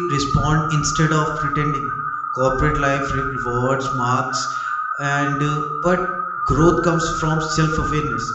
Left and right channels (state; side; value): identical; both; correlation 1.00